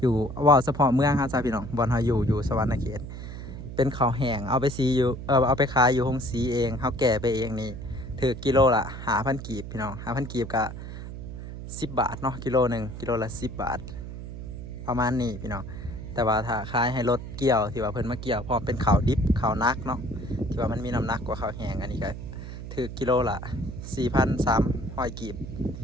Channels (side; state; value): right; noise; hum, 9 dB below the sound